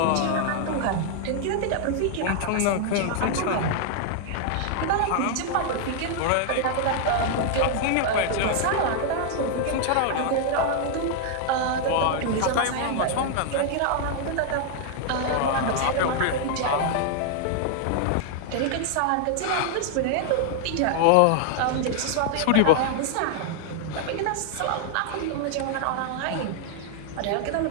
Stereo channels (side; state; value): both; different; correlation 0.00